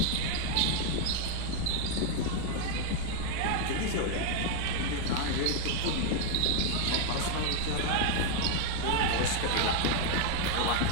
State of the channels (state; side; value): different; both; correlation 0.01